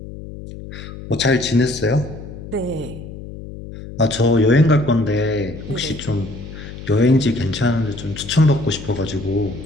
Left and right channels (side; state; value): left; noise; hum, 12 dB below the sound